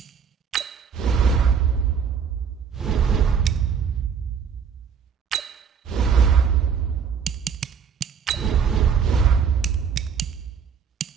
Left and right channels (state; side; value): quieter; left; 6.8 dB